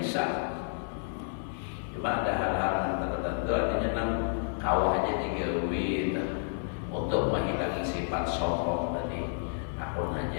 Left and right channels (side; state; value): right; silent; 57 dB below the other